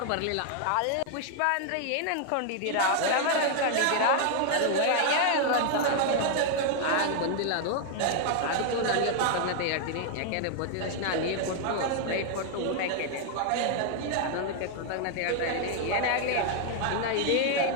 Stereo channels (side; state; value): both; different; correlation 0.00